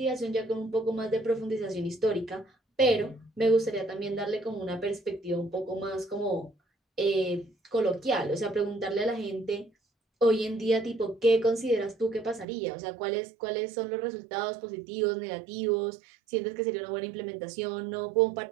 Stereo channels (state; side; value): drops out; left; at 12.5 s